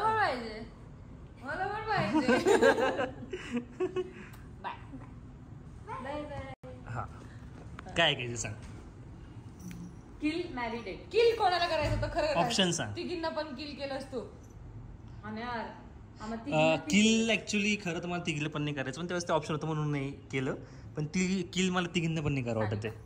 पाहिजे, मला पण पाहिजे. हा काय ऐकायचं सांग. किल मॅरी डेट. किल कोणाला करायचं होतं खरं? ऑप्शन सांग. तिघींना पण किल केलंस तू? आणि यार किल ऍक्च्युली खरं तर मला तिघीला पण नाही करायचं, पण त्यावेळेस ते ऑप्शन होतं म्हणून नाही केलं. पण ती किल मला तिघींना पण नाही करा वाटत आहे.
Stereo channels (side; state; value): both; identical; correlation 1.00